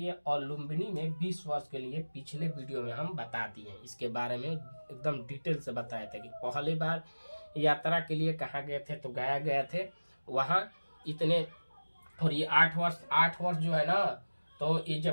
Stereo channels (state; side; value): inverted; both; correlation -1.00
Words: और लुम्बिनी में 20 वर्ष के लिए, पिछले वीडियो में हम बता दिए। इसके बारे में एकदम डिटेल से बताए थे कि पहली बार यात्रा के लिए कहाँ गए थे, तो गया गए थे वहाँ इतने। और ये 8 वर्ष जो है ना, तो ये